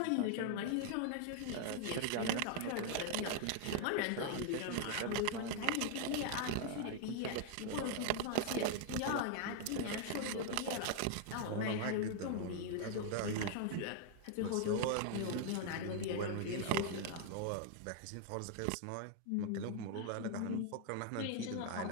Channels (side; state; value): both; different; correlation 0.00